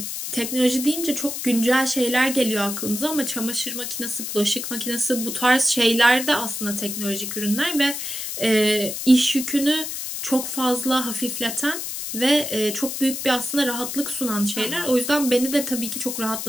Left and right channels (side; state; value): left; noise; hiss, 5 dB below the sound